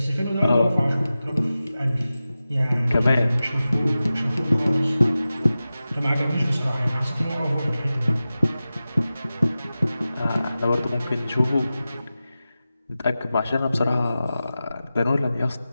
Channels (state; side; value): inverted; both; correlation -0.95